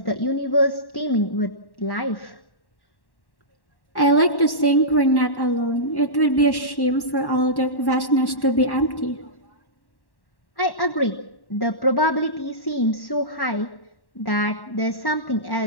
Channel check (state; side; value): late; right; 1.1 ms